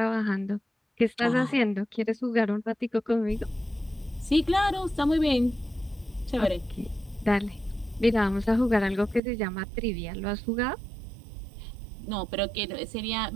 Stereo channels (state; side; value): drops out; left; at 9.2 s